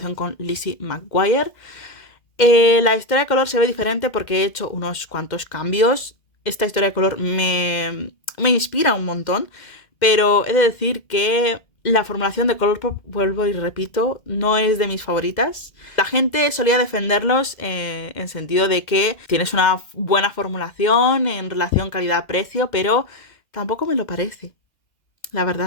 con Lizzie McGuire. La historia de color se ve diferente porque he hecho unos cuantos cambios. Esta historia de color me inspira un montón, pero he de decir que la formulación de Colourpop, vuelvo y repito, no es de mis favoritas. La gente solía defenderlos en sentido de que tienes una buena formulación en relación calidad-precio, pero tampoco me lo parece, la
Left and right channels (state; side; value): late; right; 2.0 ms